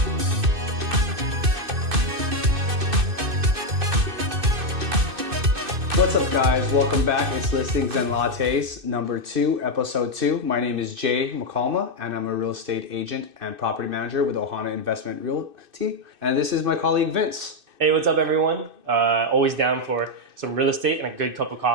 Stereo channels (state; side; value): late; left; 2.6 ms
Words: What's up guys, welcome back. It's Listings and Lattes number 2, episode 2. My name is Jay McCalma and I'm a real estate agent and property manager with Oahu Investment Realty. And this is my colleague Vince. Hey, what's up everyone? Always down for some real estate and a good cup of